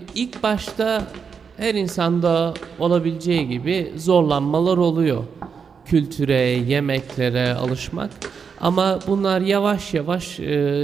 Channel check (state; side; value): quieter; left; 6.2 dB